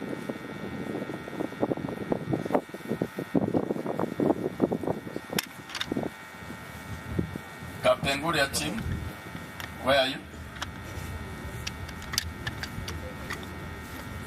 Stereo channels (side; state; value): both; identical; correlation 1.00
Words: Kapenguri ya timu, where are you?